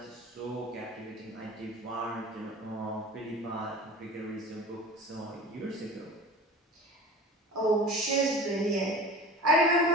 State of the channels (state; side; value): normal; both; correlation 0.37